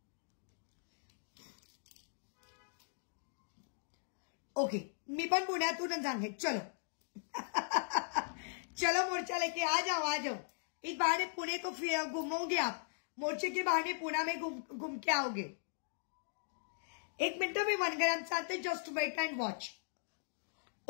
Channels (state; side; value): silent; right; digital silence